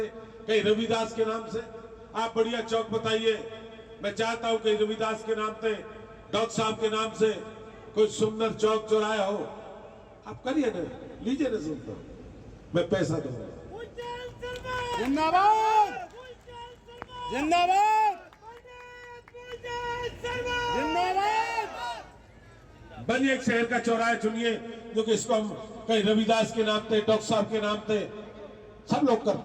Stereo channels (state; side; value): identical; both; correlation 1.00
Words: कहीं रविदास के नाम से, आप बढ़िया चौक बताइए। मैं चाहता हूं कि रविदास के नाम से, डॉक्टर साहब के नाम से कोई सुंदर चौक चौराया हो, आप करिए ना, लीजिए ना, सुनता हूं, मैं पैसा दूंगा। जिंदाबाद जिंदाबाद जिंदाबाद। बनिए एक शहर का चौराहा चुनिए, जो कि इसको हम कहीं रविदास के नाम पे, डॉक्टर साहब के नाम पे सब लोग